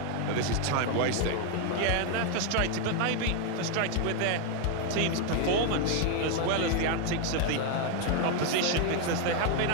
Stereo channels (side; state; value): both; different; correlation 0.01